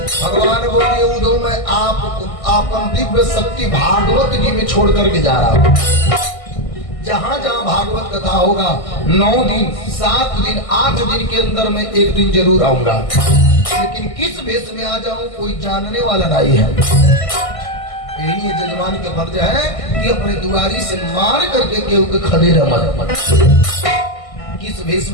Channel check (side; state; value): right; late; 1.6 ms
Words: बोल दिए उद्धव मैं आप दिव्य शक्ति भागवत जी में छोड़ करके जा रहा हूँ। जहाँ जहाँ भागवत कथा होगा 9 दिन 7 दिन 8 दिन के अंदर मैं एक दिन जरूर आऊंगा, लेकिन किस भेष में आ जाऊं कोई जानने वाला नहीं है। यही जजमान के फर्ज है कि अपने दुआरी से मार करके केहू के खदेड़ मत। किस भेष